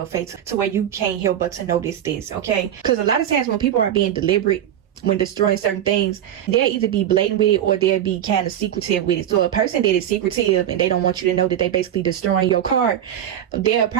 face, to where you can't help but to notice this, okay? Because a lot of times when people are being deliberate when destroying certain things, they'll either be blatant with it or they'll be kind of secretive with it. So a person that is secretive and they don't want you to know that they basically destroying your car, they'll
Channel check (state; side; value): quieter; left; 10.7 dB